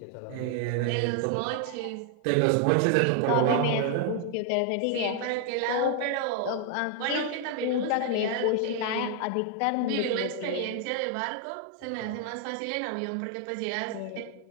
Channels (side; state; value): both; different; correlation 0.00